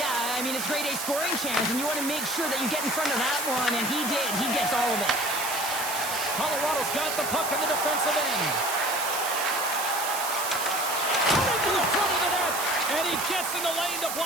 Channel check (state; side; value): noise; right; hiss, 4 dB below the sound